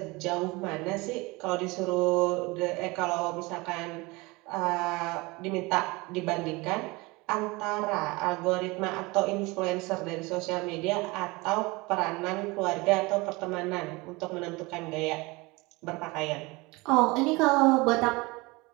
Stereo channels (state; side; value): quieter; left; 24.0 dB